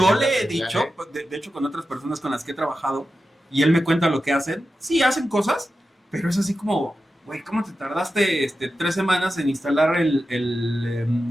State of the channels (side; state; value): both; normal; correlation 0.91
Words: le he dicho, de hecho, con otras personas con las que he trabajado, y él me cuenta lo que hacen. Sí, hacen cosas, pero es así como, güey, ¿cómo te tardaste 3 semanas en instalar